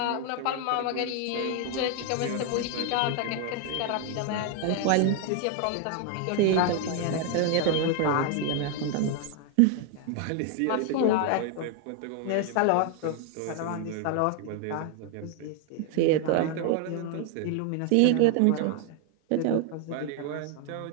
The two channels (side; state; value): both; different; correlation 0.00